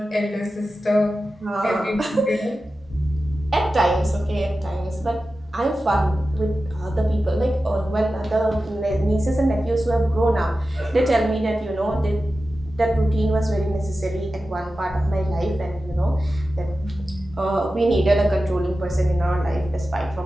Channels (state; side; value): normal; both; correlation 0.93